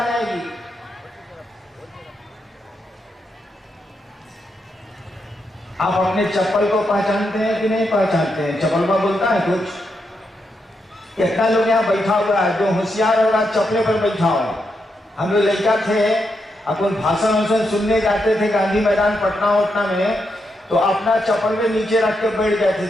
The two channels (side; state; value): both; normal; correlation 0.82